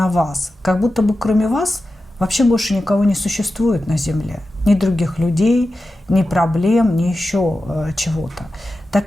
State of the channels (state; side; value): normal; both; correlation 0.92